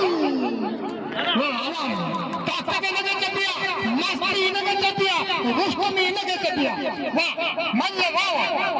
ताकत लगे चपिया मस्ती लगे चपिया उसको में लगे चपिया वाह मल्ल वाह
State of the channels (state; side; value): identical; both; correlation 1.00